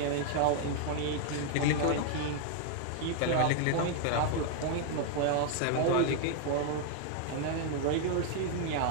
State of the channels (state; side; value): different; both; correlation 0.00